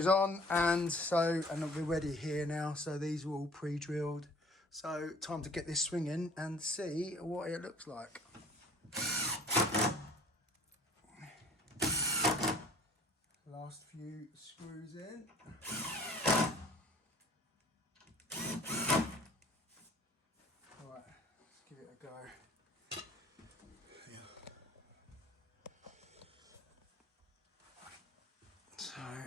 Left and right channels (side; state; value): both; normal; correlation 0.50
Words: on, and we're ready here now. So these are all pre-drilled. So time to get this swinging and see what it looks like. Last few screws in. Right, let's give it a go. Yeah. So,